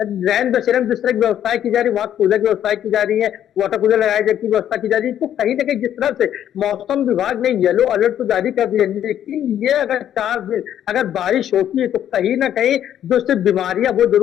रैन बसेरे में जिस तरह की व्यवस्थाएं की जा रही है, वहां कूलर की व्यवस्थाएं की जा रही है, वाटर कूलर लगाए जाने की व्यवस्था की जा रही है, तो कहीं ना कहीं जिस तरह से मौसम विभाग ने येलो अलर्ट तो जारी कर दिया, लेकिन ये अगर 4 दिन अगर बारिश होती है तो कहीं ना कहीं जो सिर्फ बीमारियां वो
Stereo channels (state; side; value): quieter; right; 10.5 dB